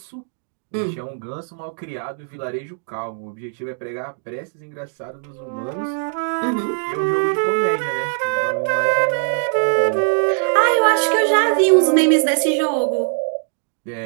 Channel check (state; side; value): silent; left; digital silence